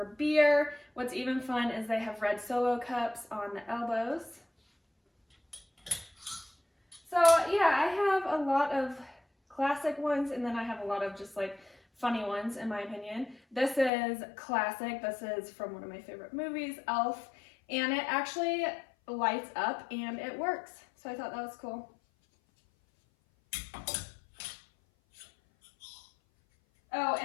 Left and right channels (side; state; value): right; drops out; at 13.9 s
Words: beer. What's even fun is they have red Solo cups on the elbows. So yeah, I have a lot of classic ones, and then I have a lot of just like funny ones in my opinion. This is classic. This is from one of my favorite movies, Elf, and it actually lights up and it works. So I thought that was cool. Oh,